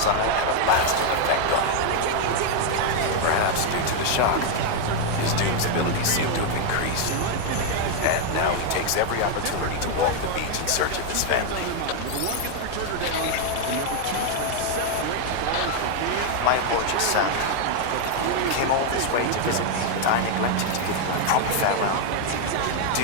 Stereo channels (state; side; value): different; both; correlation 0.01